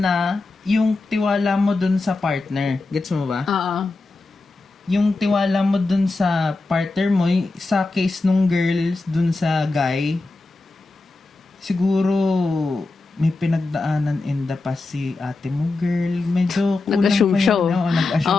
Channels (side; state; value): right; quieter; 3.4 dB